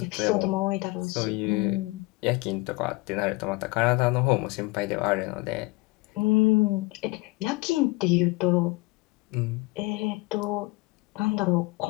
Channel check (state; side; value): quieter; right; 23.2 dB